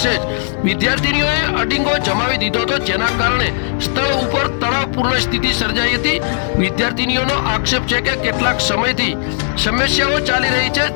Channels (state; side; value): silent; right; digital silence